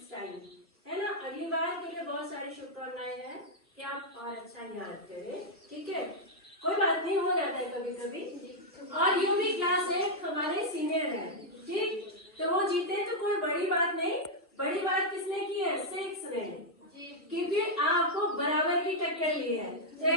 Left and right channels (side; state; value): both; normal; correlation -0.03